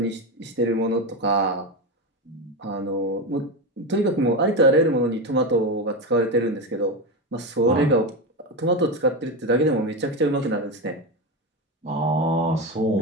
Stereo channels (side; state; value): both; normal; correlation 0.16